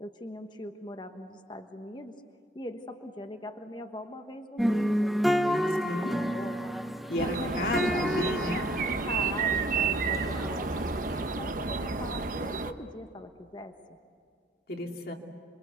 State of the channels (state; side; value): normal; both; correlation 0.63